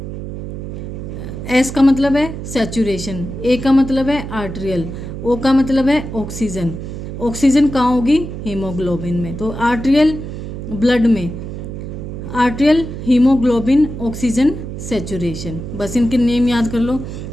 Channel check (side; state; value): right; noise; hum, 8 dB below the sound